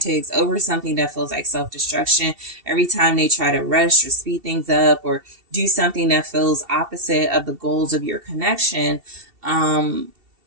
over something that feels like self-destruction. Every time they try to rush or speed things up or do something that feels opposite of the goals of your connection,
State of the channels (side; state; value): left; late; 2.7 ms